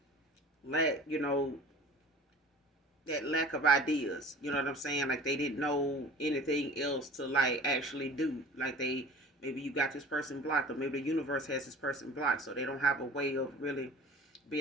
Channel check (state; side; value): normal; both; correlation 0.43